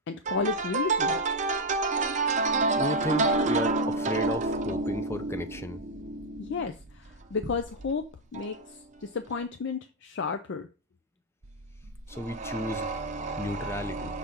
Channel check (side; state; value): both; normal; correlation 0.01